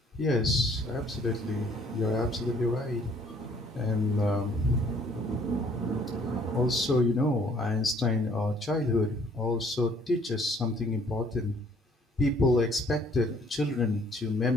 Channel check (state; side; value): normal; both; correlation 0.60